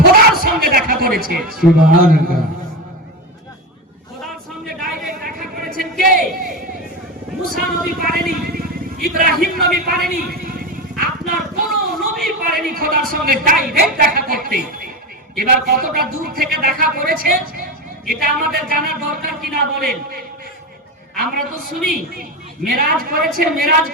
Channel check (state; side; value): normal; both; correlation 0.18